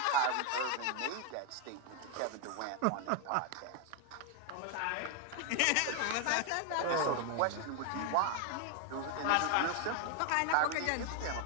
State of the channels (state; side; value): different; both; correlation 0.00